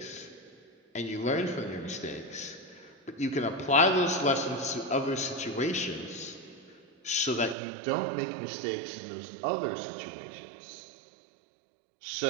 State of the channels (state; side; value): drops out; left; at 7.6 s